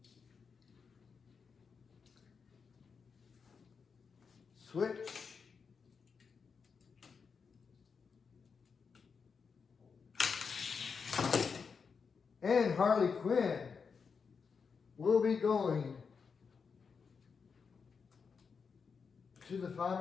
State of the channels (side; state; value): right; quieter; 5.7 dB